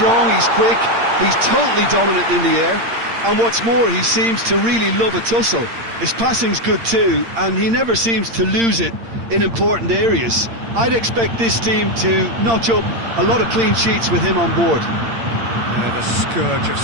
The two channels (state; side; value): late; left; 8.7 ms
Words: he's quick, he's totally dominant in the air, and what's more, he seems to really love a tussle. His passing's good too, and he never seems to lose it in important areas. I'd expect this team to notch up a lot of clean sheets with him on board. The scourge of